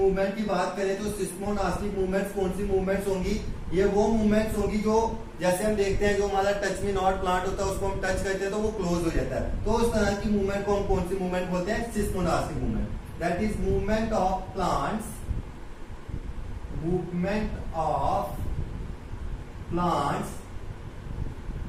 की बात करें तो सिस्मोनास्टिक मूवमेंट्स कौन सी मूवमेंट्स होंगी, ये वो मूवमेंट्स होंगी जो जैसे हम देखते हैं जो हमारा टच में नॉट प्लांट होता है उसको हम टच करते हैं तो वो क्लोज हो जाता है। तो उस तरह की मूवमेंट को हम कौन सी मूवमेंट बोलते हैं, seismonastic movement. That is movement of plants, movement of plants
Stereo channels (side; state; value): both; identical; correlation 1.00